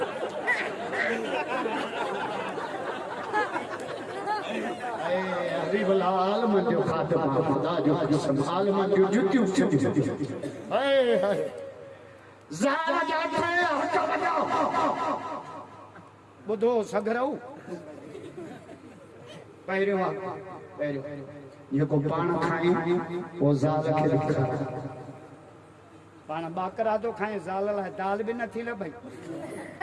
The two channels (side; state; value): both; identical; correlation 1.00